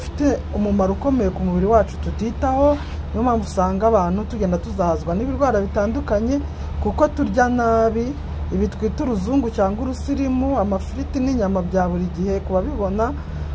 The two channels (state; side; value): identical; both; correlation 1.00